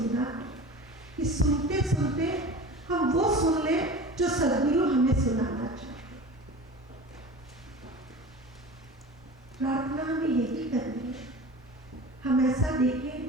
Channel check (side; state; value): both; normal; correlation 0.35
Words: है कि सुनते सुनते हम वो सुन ले जो सद्गुरु हमें सुनाना चाहते। प्रार्थना हमें यही करनी है, हम ऐसा देखें